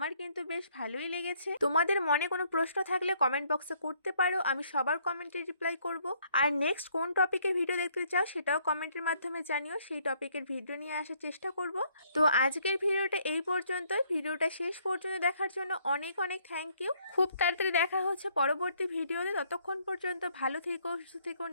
কিন্তু বেশ ভালোই লেগেছে। তোমাদের মনে কোনো প্রশ্ন থাকলে কমেন্ট বক্সে করতে পারো, আমি সবার কমেন্টে রিপ্লাই করব। আর নেক্সট কোন টপিকের ভিডিও দেখতে চাও সেটাও কমেন্টের মাধ্যমে জানিও, সেই টপিকের ভিডিও নিয়ে আসার চেষ্টা করব। তো আজকের ভিডিওটা এই পর্যন্তই। ভিডিওটা শেষ পর্যন্ত দেখার জন্য অনেক অনেক থ্যাংক ইউ। খুব তাড়াতাড়ি দেখা হচ্ছে পরবর্তী ভিডিওতে। ততক্ষণ পর্যন্ত ভালো থেকো, সুস্থ থেকো,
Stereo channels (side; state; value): both; inverted; correlation -0.66